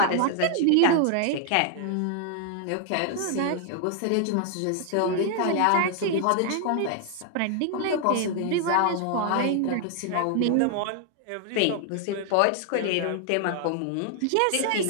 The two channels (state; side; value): different; both; correlation 0.00